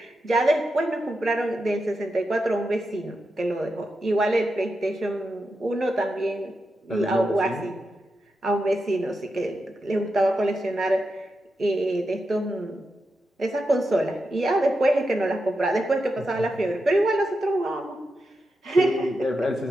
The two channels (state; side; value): normal; both; correlation 0.88